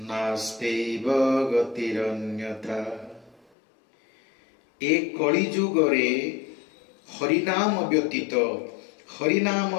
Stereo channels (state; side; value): drops out; right; at 3.4 s